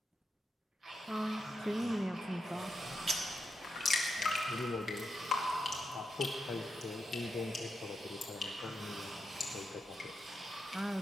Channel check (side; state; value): both; normal; correlation 0.85